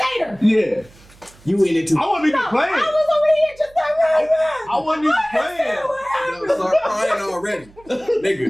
Yeah, You in it too. I wasn't even No, playing. I was over here just like, I wasn't even playing. Yo, start crying already,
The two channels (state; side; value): noise; right; hum, 26 dB below the sound